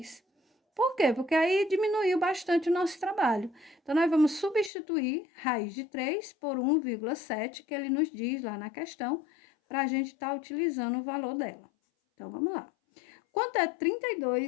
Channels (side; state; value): right; drops out; at 4.7 s